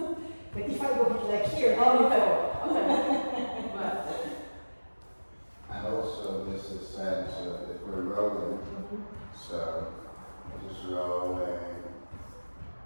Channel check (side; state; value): both; inverted; correlation -1.00